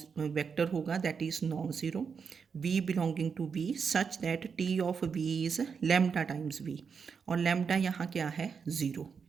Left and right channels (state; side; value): quieter; left; 6.1 dB